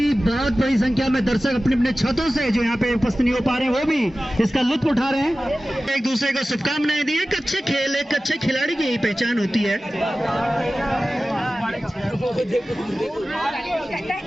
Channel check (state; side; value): normal; both; correlation 0.96